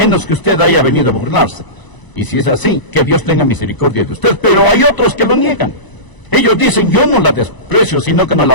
que usted haya venido a burlarse. Y si es así, que Dios tenga misericordia de usted. Pero hay otros que lo niegan. Ellos dicen, yo no la desprecio, sino que no la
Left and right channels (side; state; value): right; late; 1.0 ms